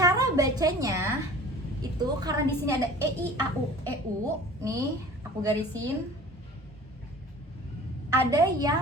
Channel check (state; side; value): normal; both; correlation 0.44